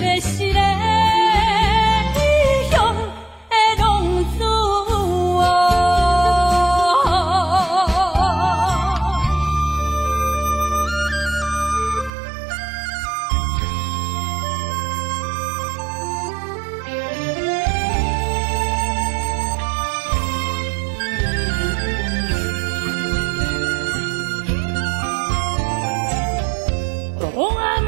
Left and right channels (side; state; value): left; drops out; at 12.1 s